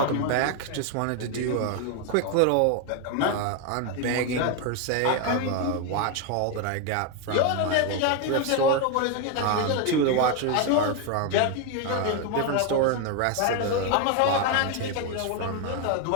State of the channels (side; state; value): both; different; correlation 0.02